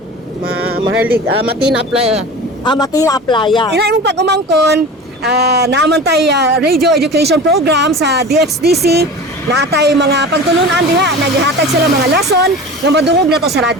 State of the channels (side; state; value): both; normal; correlation 0.34